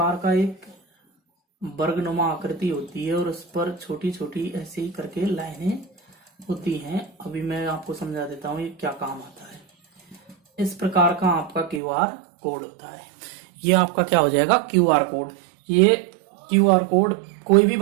का एक वर्गनुमा आकृति होती है और उस पर छोटी छोटी ऐसे ही करके लाइनें होती हैं। अभी मैं आपको समझा देता हूँ ये क्या काम आता है। इस प्रकार का आपका क्यूआर कोड होता है। ये आपका क्या हो जाएगा, क्यूआर कोड। ये क्यूआर कोड कोई भी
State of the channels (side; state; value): left; drops out; at 11.8 s